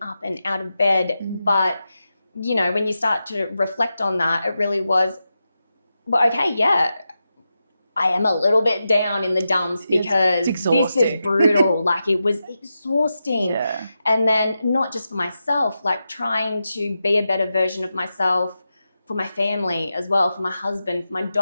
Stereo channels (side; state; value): both; inverted; correlation -0.89